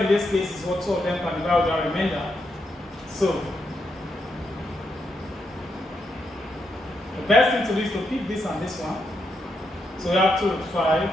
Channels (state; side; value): normal; both; correlation 0.81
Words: in this case is what 2 of them can divide with our remainder. So the best thing to do is to pick this and this one. So we have 2 root 5,